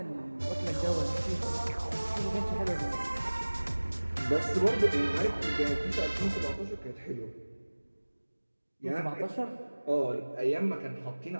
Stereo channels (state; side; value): inverted; both; correlation -1.00